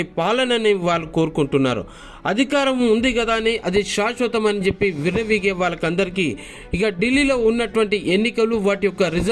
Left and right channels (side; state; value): both; identical; correlation 1.00